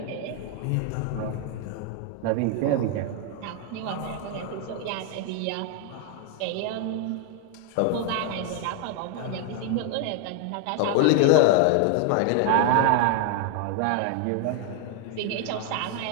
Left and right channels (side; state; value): both; different; correlation 0.00